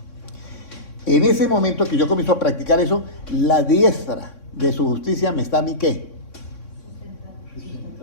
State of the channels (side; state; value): right; late; 3.6 ms